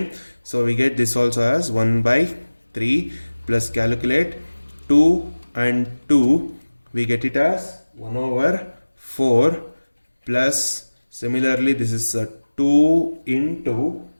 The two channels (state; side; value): inverted; both; correlation -1.00